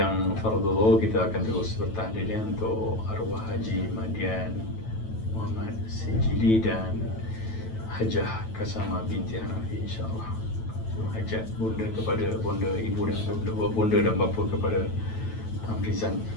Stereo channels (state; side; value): late; right; 9.1 ms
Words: fardhu, kita akan terus bertahlil untuk arwah Haji Madian Muhammad Sijili dan Hajah Kasama binti Hanafi, insyaAllah. Hajat bunda kepada bonda ibu dan bonda dan bapa kepada Amrizan